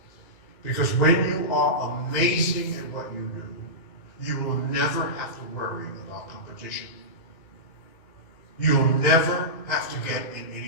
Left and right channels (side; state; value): right; late; 2.0 ms